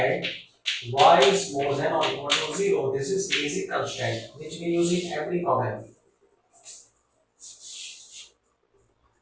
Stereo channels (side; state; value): both; identical; correlation 1.00